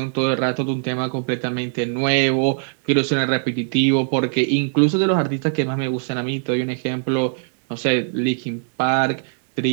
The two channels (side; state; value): left; silent; digital silence